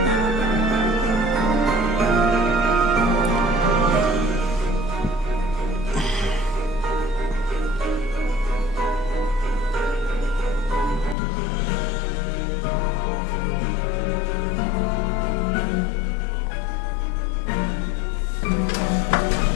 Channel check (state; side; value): drops out; right; at 11.2 s